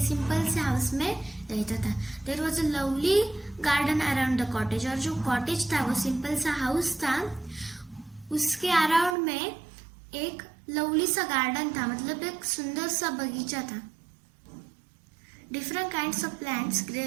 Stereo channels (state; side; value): drops out; left; at 9.2 s